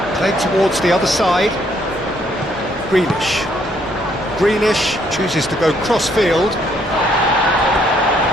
Played towards the other side. Grealish. Grealish chooses to go cross-field.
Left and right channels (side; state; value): both; normal; correlation 0.69